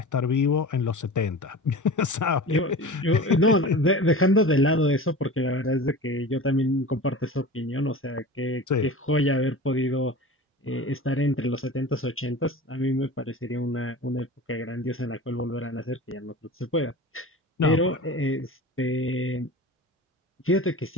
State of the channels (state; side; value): normal; both; correlation 0.35